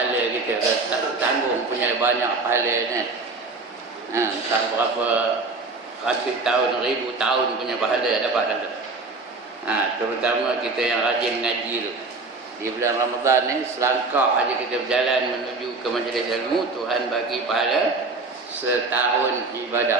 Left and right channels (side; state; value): left; quieter; 3.7 dB